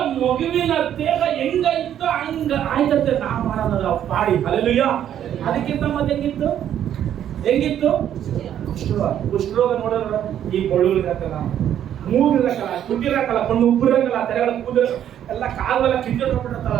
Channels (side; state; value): left; quieter; 10.4 dB